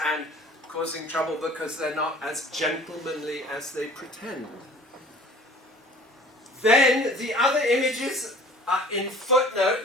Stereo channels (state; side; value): normal; both; correlation 0.47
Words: and causing trouble because they're not as gentlemanly as they pretend. Then the other images are in